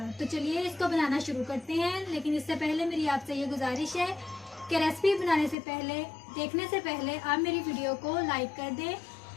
तो चलिए इसको बनाना शुरू करते हैं। लेकिन इससे पहले मेरी आपसे ये गुजारिश है कि रेसिपी बनाने से पहले, देखने से पहले आप मेरी वीडियो को लाइक कर दें,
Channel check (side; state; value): right; drops out; at 5.6 s